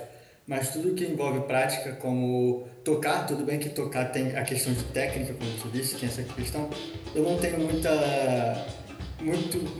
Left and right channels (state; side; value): identical; both; correlation 1.00